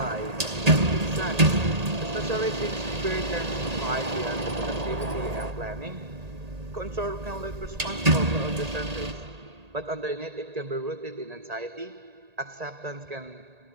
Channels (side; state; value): left; late; 1.8 ms